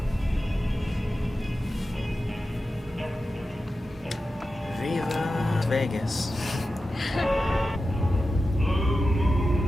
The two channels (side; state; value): both; normal; correlation 0.92